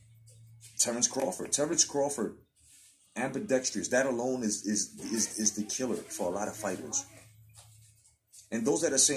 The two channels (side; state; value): both; identical; correlation 1.00